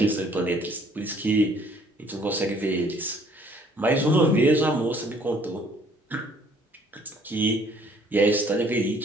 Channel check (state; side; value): normal; both; correlation 0.59